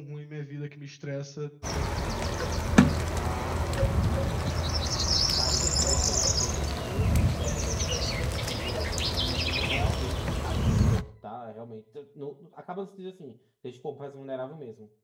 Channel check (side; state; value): both; identical; correlation 1.00